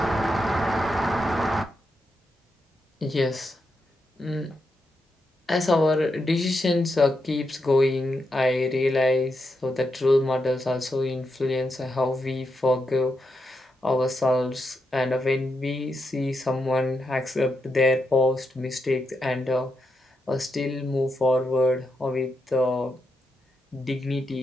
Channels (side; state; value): both; normal; correlation 0.84